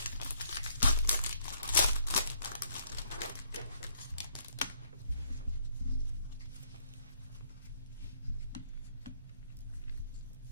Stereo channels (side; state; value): both; inverted; correlation -0.68